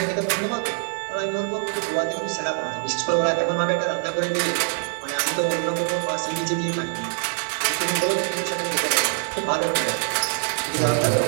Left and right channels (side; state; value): left; silent; digital silence